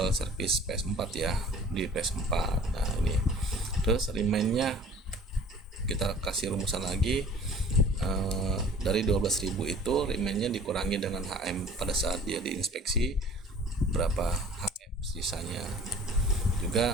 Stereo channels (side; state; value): both; normal; correlation 0.48